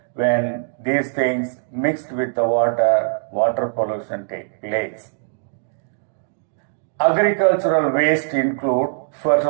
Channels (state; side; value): silent; left; digital silence